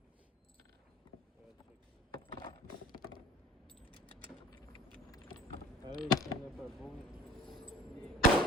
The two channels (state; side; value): normal; both; correlation 0.48